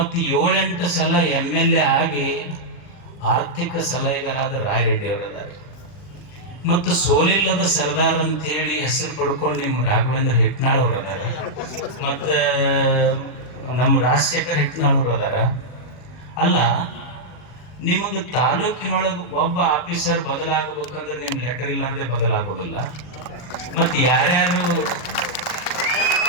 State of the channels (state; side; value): late; right; 40 ms